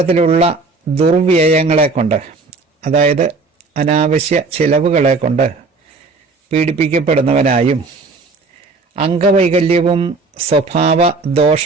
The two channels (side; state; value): left; quieter; 3.9 dB